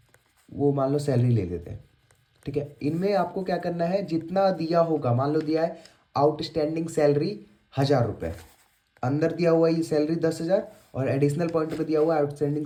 वो मान लो सैलरी ले लेते हैं। ठीक है, इनमें आपको क्या करना है, जितना दिया होगा, मान लो दिया है आउटस्टैंडिंग सैलरी 1000 रुपये, अंदर दिया हुआ ये सैलरी 10,000, और एडिशनल पॉइंट में दिया हुआ आउटस्टैंडिंग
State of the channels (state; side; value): identical; both; correlation 1.00